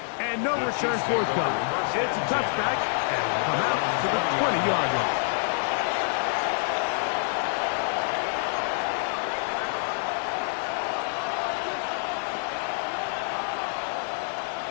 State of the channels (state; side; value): silent; right; digital silence